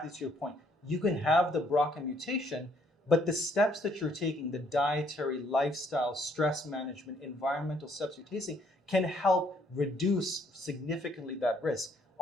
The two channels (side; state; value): both; normal; correlation 0.67